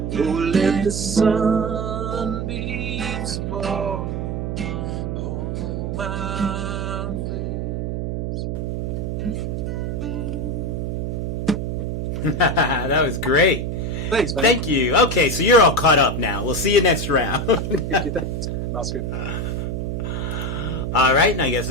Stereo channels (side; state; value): right; noise; hum, 2 dB below the sound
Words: Oh, let the sunbeams fall on my face. That was great. Thanks, man. Thank you. Okay, so you're all caught up now. We'll see you next round. Thanks, Oscar. All right, and I guess